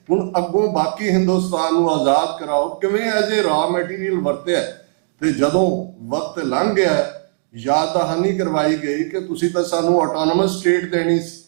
ਹੁਣ ਅੱਗੋਂ ਬਾਕੀ ਹਿੰਦੁਸਤਾਨ ਨੂੰ ਆਜ਼ਾਦ ਕਰਾਓ। ਕਿਵੇਂ ਐਜ਼ ਏ ਰਾ ਮਟੀਰੀਅਲ ਵਰਤਿਆ। ਤੇ ਜਦੋਂ ਵਕਤ ਲੰਘ ਗਿਆ, ਯਾਦ ਦਹਾਨੀ ਕਰਵਾਈ ਗਈ ਕਿ ਤੁਸੀਂ ਤਾਂ ਸਾਨੂੰ ਆਟੋਨੋਮਸ ਸਟੇਟ ਦੇਣੀ ਸੀ।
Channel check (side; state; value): left; silent; digital silence